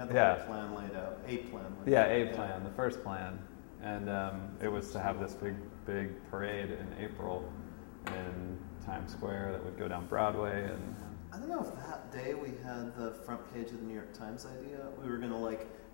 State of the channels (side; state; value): right; silent; digital silence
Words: whole plan laid out, a plan. Plan, the first plan, and it was to have this big parade in April in Times Square that would go down Broadway. And I don't know if that day we had the front page of the New York Times idea. We were going to